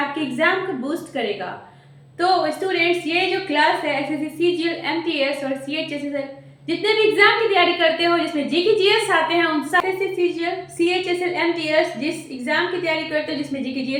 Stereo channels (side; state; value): both; identical; correlation 1.00